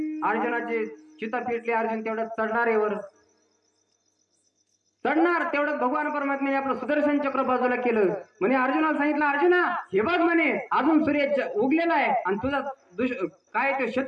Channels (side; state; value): both; identical; correlation 1.00